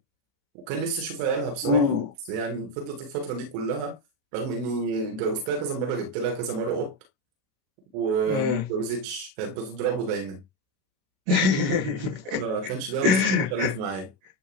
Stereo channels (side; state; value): left; late; 32 ms